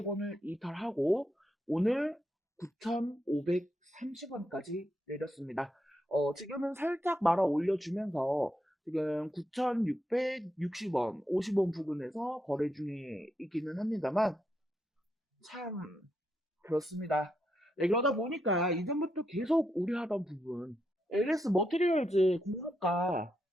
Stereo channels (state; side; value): normal; both; correlation 0.82